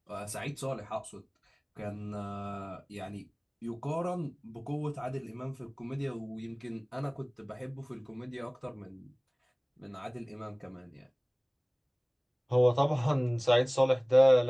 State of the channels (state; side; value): identical; both; correlation 1.00